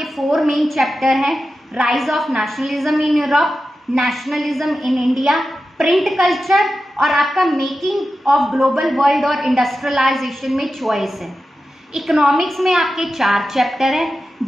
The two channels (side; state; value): both; normal; correlation 0.92